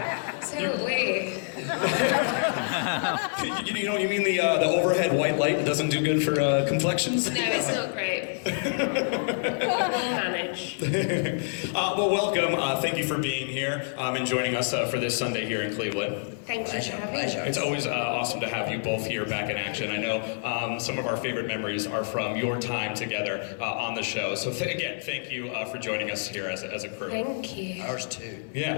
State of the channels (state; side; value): silent; right; digital silence